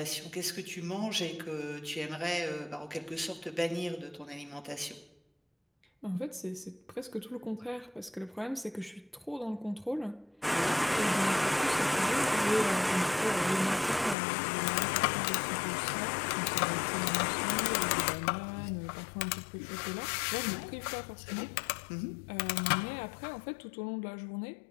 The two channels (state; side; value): drops out; right; at 14.2 s